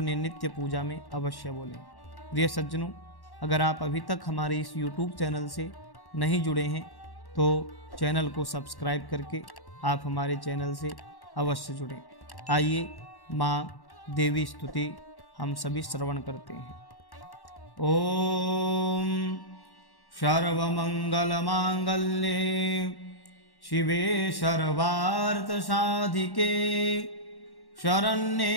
नित्य पूजा में अवश्य बोलें। प्रिय सज्जनों, अगर आप अभी तक हमारे इस YouTube चैनल से नहीं जुड़े हैं तो चैनल को सब्सक्राइब करके आप हमारे चैनल से अवश्य जुड़ें। आइए माँ देवी स्तुति हम सभी श्रवण करते हैं। ओम सर्वमंगलमांगल्ये शिवे सर्वार्थसाधिके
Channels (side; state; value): right; late; 1.1 ms